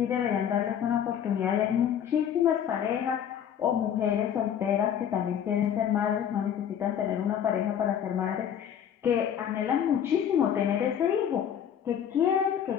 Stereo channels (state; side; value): quieter; right; 9.1 dB